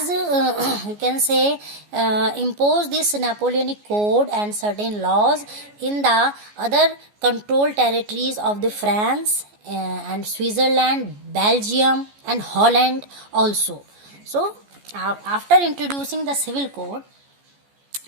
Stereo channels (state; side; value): late; left; 14 ms